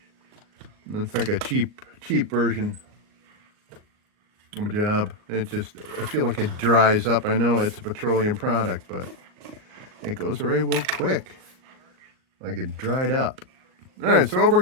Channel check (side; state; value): left; late; 38 ms